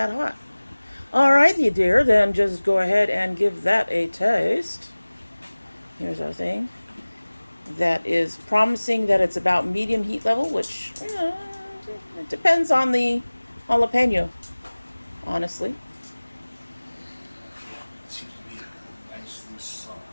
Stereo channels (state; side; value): inverted; both; correlation -1.00